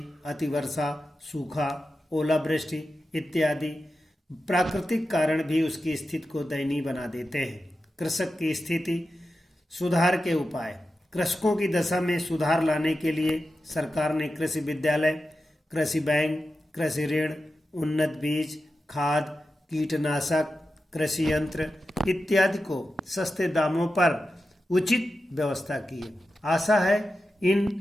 अतिवर्षा, सूखा, ओलावृष्टि इत्यादि प्राकृतिक कारण भी उसकी स्थिति को दयनीय बना देते हैं। कृषक की स्थिति सुधार के उपाय। कृषकों की दशा में सुधार लाने के लिए सरकार ने कृषि विद्यालय, कृषि बैंक, कृषि ऋण, उन्नत बीज, खाद, कीटनाशक, कृषि यंत्र इत्यादि को सस्ते दामों पर उचित व्यवस्था की है। आशा है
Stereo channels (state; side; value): normal; both; correlation 0.91